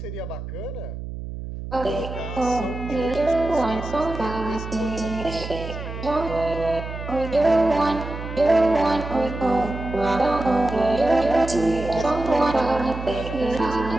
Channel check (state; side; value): noise; right; hum, 8 dB below the sound